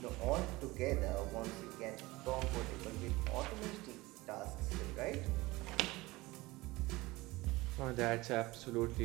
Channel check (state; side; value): quieter; left; 20.7 dB